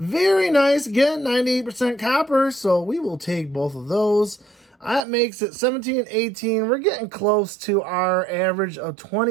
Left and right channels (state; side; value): drops out; left; at 5.1 s